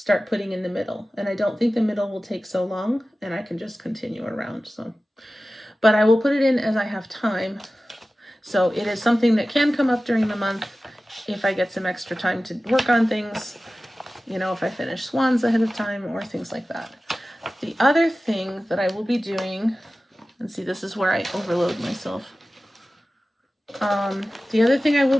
putting in the middle. And I don't think the middle will take so long, and I can just continue around. So, but I will put it in as I have time. So it is something that can come up during the month if I get some extra time to work on things, if I finish Swans ahead of time or things like that. The other thing that I will be doing, and see, this is where I overload myself. The other thing I will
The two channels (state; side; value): normal; both; correlation 0.96